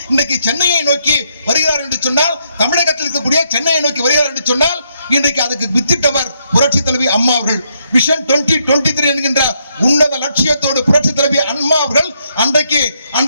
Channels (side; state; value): both; inverted; correlation -0.76